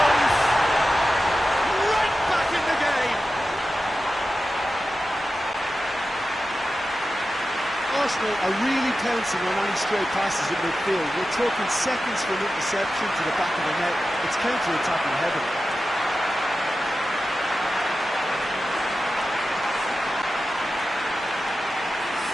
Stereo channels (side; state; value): both; normal; correlation 0.93